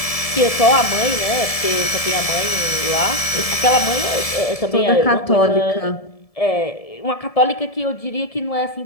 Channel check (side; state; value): right; late; 1.7 ms